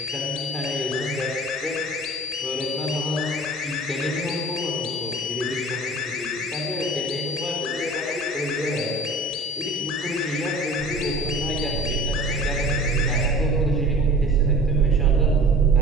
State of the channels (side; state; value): both; normal; correlation 0.42